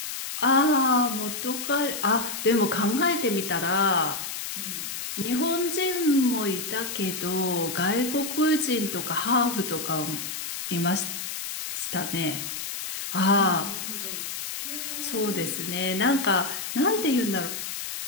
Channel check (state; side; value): noise; left; hiss, 6 dB below the sound